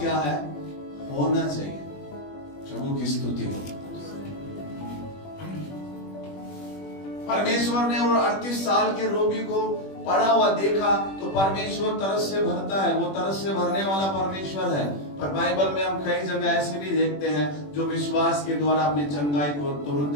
है? होना चाहिए। प्रभु की स्तुति हो। परमेश्वर ने वो 38 साल के रोगी को पड़ा हुआ देखा तो परमेश्वर तरस से भरता है, वो तरस से भरने वाला परमेश्वर है। पर बाइबल में हम कई जगह ऐसे भी देखते हैं जो विश्वास के द्वारा अपनी चंगाई को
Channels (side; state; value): right; late; 21 ms